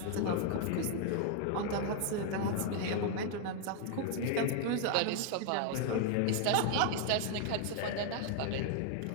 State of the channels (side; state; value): both; different; correlation 0.00